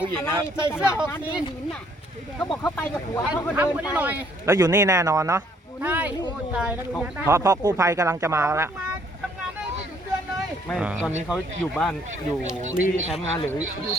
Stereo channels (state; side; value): normal; both; correlation 0.65